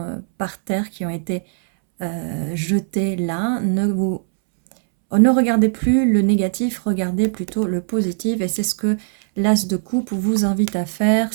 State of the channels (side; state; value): left; silent; 66 dB below the other